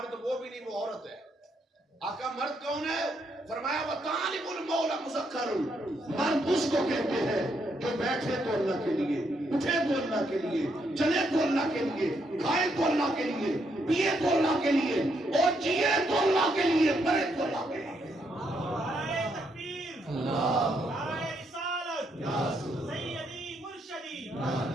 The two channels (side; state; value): both; normal; correlation 0.76